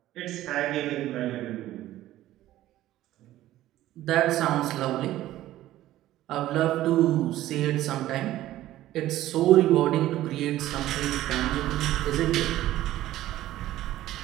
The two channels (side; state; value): left; quieter; 14.5 dB